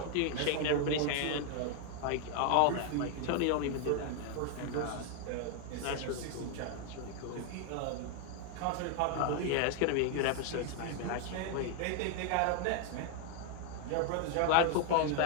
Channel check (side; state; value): both; different; correlation 0.01